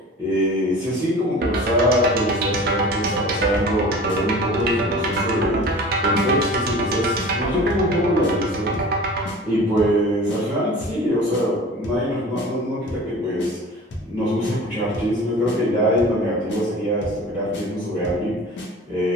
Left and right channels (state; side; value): normal; both; correlation 0.40